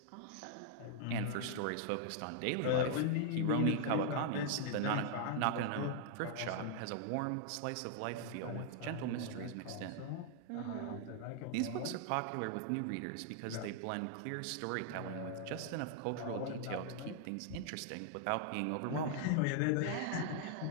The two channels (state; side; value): different; both; correlation 0.00